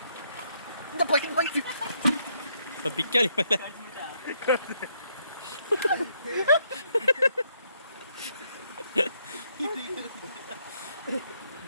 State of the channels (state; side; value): inverted; both; correlation -0.73